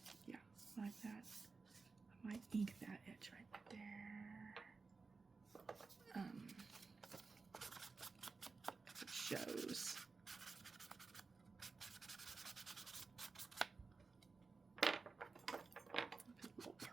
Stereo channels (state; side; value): quieter; left; 4.3 dB